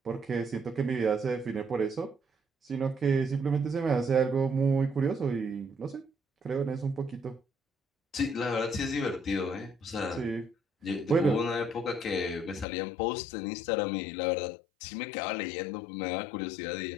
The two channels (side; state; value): right; drops out; at 12.7 s